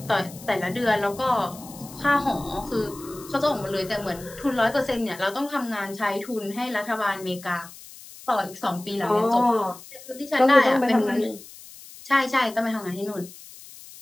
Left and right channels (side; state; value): left; noise; hiss, 18 dB below the sound